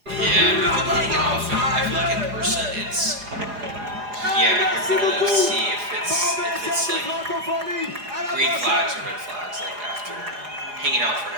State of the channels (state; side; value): late; left; 4.8 ms